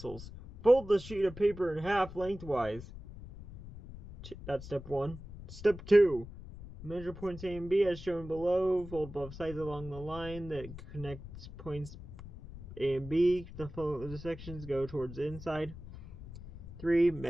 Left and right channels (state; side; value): noise; left; rumble, 14 dB below the sound